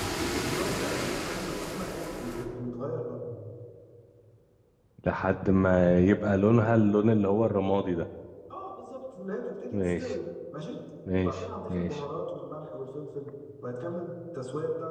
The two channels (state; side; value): identical; both; correlation 1.00